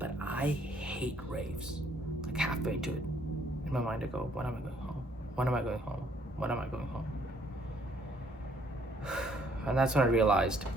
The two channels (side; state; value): both; normal; correlation 0.65